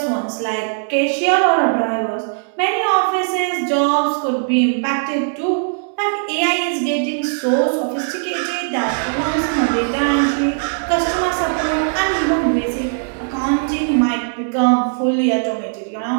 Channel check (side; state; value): left; silent; digital silence